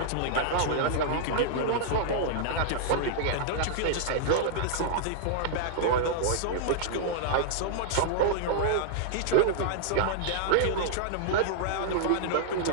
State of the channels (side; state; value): both; different; correlation -0.01